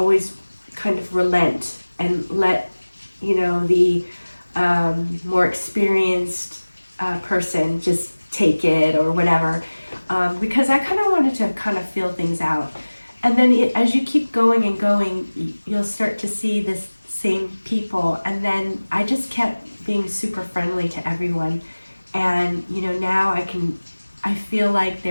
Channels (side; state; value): both; inverted; correlation -1.00